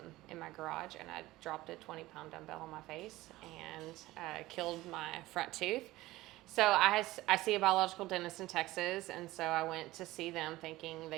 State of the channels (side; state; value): left; quieter; 17.7 dB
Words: in my garage, and I dropped a 20-pound dumbbell on my face and killed my front tooth. So I see a biological dentist in Texas, and so I went to see them thinking